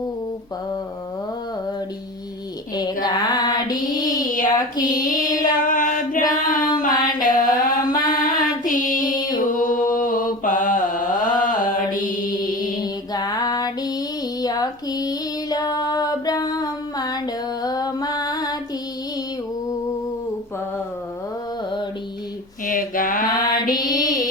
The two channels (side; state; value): both; normal; correlation 0.33